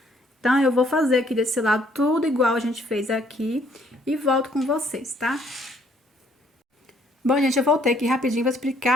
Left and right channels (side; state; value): both; normal; correlation 0.65